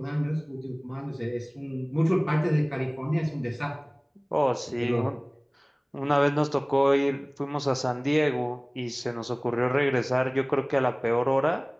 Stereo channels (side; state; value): both; identical; correlation 1.00